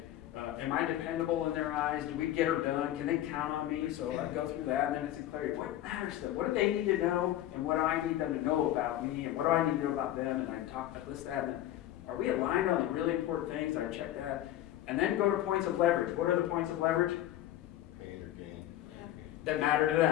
am I dependable in their eyes? Do we get her done? Can they count on me? So I go through that, and then it's in clarity. What matters to them? What do they need to know, and what do I need them to know about me, and what do I need to know about them? And I list that, and then are we aligned on the really important things? I check that. And then go to points of leverage. What are the points of leverage? Pain or gain. That matter to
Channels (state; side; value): quieter; right; 13.3 dB